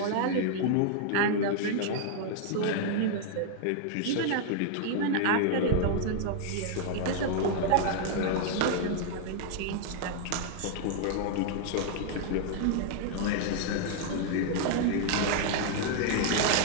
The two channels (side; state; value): both; different; correlation 0.00